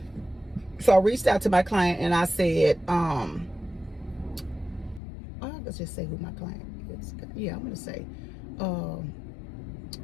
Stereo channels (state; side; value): drops out; right; at 5.0 s